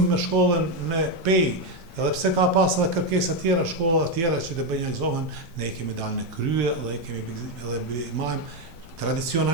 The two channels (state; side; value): noise; left; rumble, 20 dB below the sound